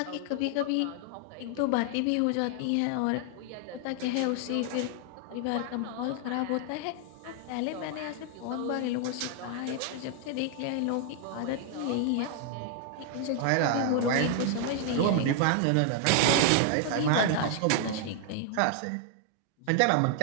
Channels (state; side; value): different; both; correlation 0.00